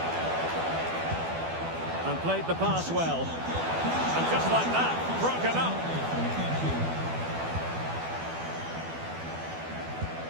played the pass well. And just like that, broken up.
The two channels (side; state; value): left; late; 12 ms